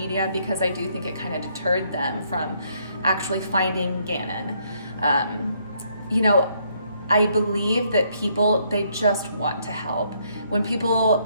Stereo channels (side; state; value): both; inverted; correlation -0.71